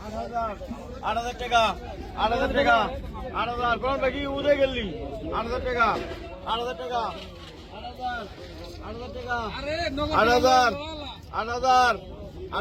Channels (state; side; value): identical; both; correlation 1.00